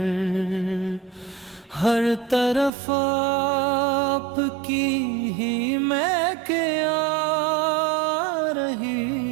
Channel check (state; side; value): drops out; left; at 2.7 s